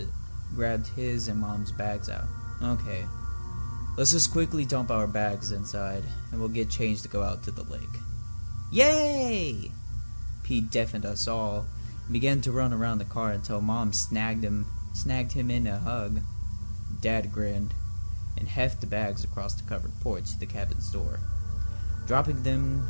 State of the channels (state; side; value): inverted; both; correlation -1.00